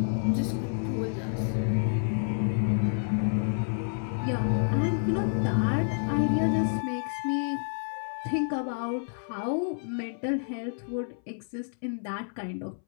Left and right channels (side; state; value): right; silent; 58 dB below the other